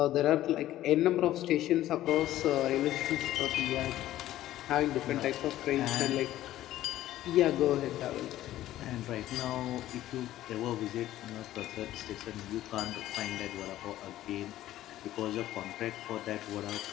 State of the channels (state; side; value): quieter; right; 14.0 dB